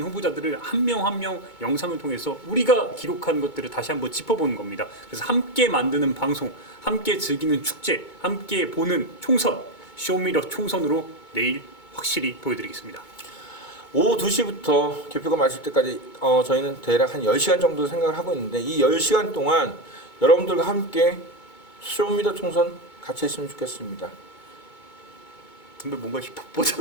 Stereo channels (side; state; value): right; late; 2.2 ms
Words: 후보자들을 한 명 한 명 영상을 통해서 우리가 기록한 것들을 다시 한번 짚어보는 겁니다. 그래서 함께 만드는 방송, 함께 즐기는 축제, 함께 보는 총선, 쇼미더 총선으로 내일 확실히 보여드리겠습니다. 오후 2시부터 개표가 마칠 때까지 저희는 대략 한 10시간 정도 생각을 하고 있는데 이 10시간 동안 여러분들과 함께 쇼미더 총선 같이 했으면 좋겠습니다. 근데 뭔가 힙합